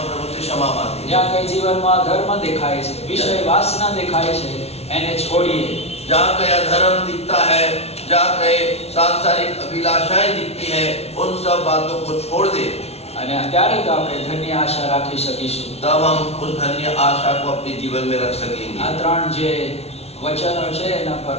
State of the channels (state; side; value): late; right; 0.31 ms